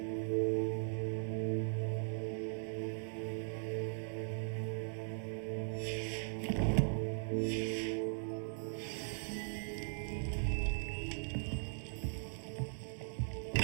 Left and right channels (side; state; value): left; silent; digital silence